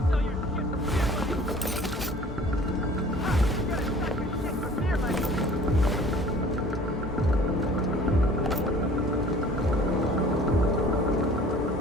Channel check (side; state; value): both; normal; correlation 0.49